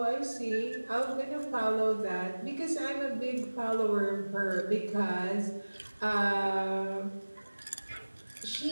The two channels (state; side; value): inverted; both; correlation -1.00